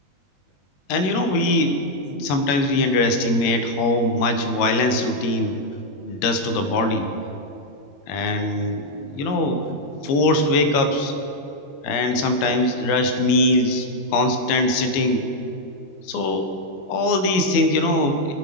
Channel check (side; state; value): right; late; 21 ms